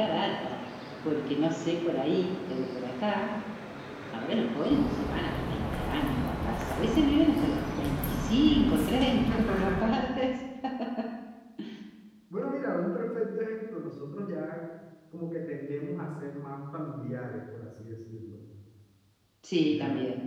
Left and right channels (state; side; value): identical; both; correlation 1.00